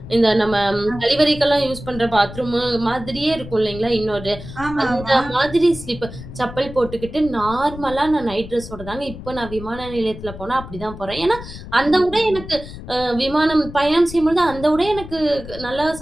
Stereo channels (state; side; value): noise; left; rumble, 13 dB below the sound